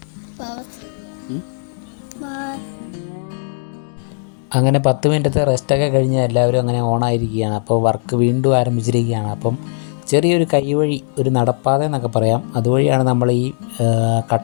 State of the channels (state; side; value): silent; right; digital silence